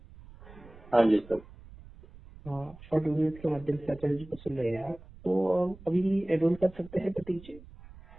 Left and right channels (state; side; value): noise; right; rumble, 20 dB below the sound